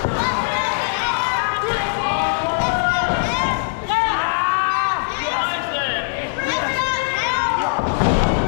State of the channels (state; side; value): silent; right; 60 dB below the other